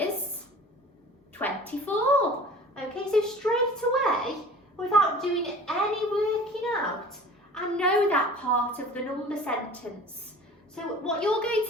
24. Okay, so straight away, without doing any working out, I know that part of the number sentence. So what you're going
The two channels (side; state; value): both; normal; correlation 0.43